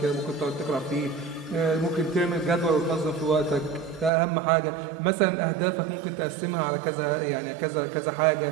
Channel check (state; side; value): drops out; left; at 4.1 s